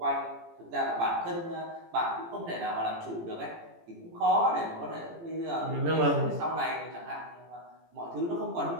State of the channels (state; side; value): late; left; 18 ms